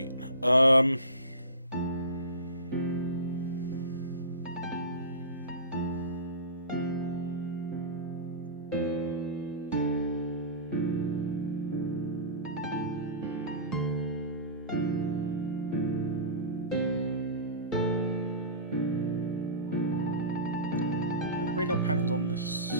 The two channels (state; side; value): inverted; both; correlation -0.31